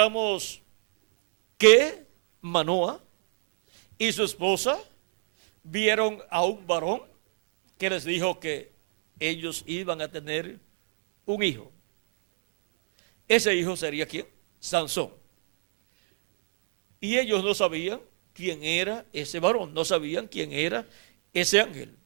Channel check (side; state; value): left; silent; digital silence